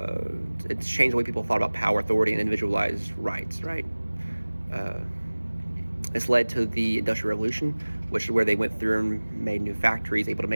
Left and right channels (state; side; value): inverted; both; correlation -1.00